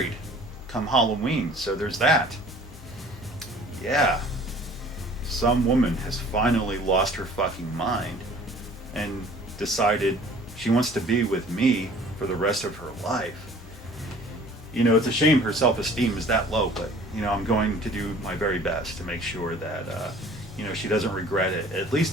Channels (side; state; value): both; normal; correlation 0.50